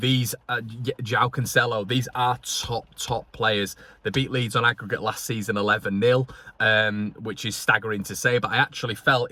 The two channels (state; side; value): identical; both; correlation 1.00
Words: João Cancelo, these are top players. They beat Leeds on aggregate last season 11-0, which is staggering to say, but I actually felt